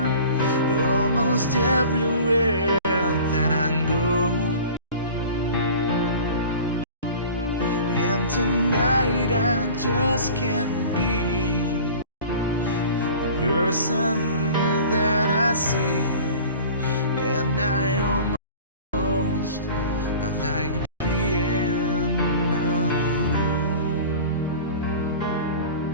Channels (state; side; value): inverted; both; correlation -0.41